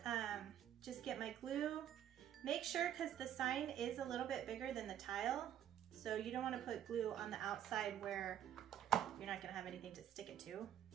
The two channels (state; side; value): quieter; left; 10.4 dB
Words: just get my glue. Make sure, because the sign is a little bit bigger than the tile, so you don't wanna put glue on the outside where you're not gonna have anything to stick it to.